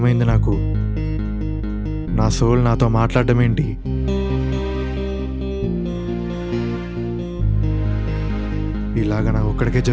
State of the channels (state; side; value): identical; both; correlation 1.00